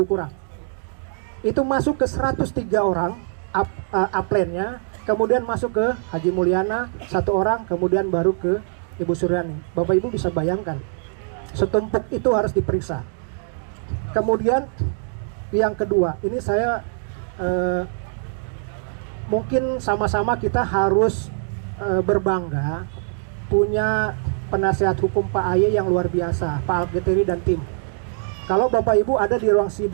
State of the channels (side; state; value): left; silent; digital silence